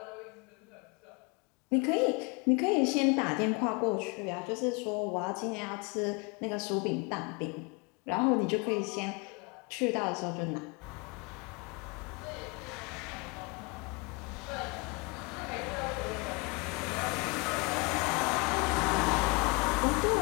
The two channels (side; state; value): right; quieter; 28.9 dB